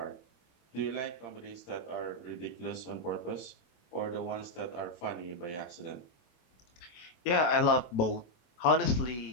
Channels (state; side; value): late; right; 24 ms